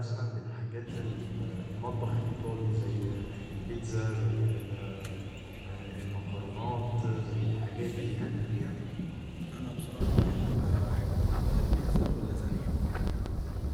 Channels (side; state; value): both; identical; correlation 1.00